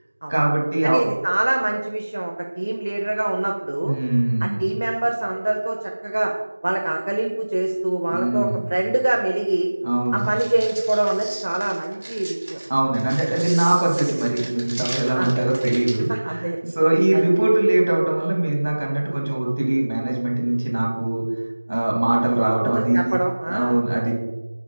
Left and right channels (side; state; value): both; inverted; correlation -1.00